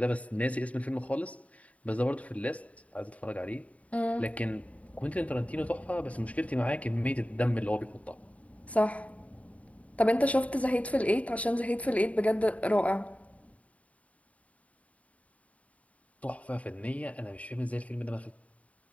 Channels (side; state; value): right; late; 0.067 ms